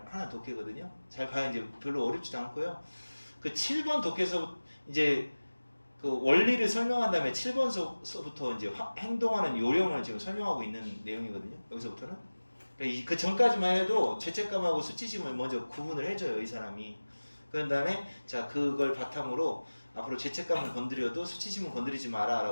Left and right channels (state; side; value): inverted; both; correlation -1.00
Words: 하나 독해거든요. 잘 봐야 이제 별로 어렵지도 않고요. 그 7번 독해서 이제 그 원리를 설명한 다음에 7번서부터 이제 행동하는 요령을 지금 설명하고 있는 내용이거든요. 여기서부터는. 그러니까 그 전까지만 해도 죄책감하고 수치심을 먼저 구분을 해줘요, 이 사람이. 그런 다음에 자 그걸 바탕으로 앞으로 죄책감을 건드려도 수치심을 건드리지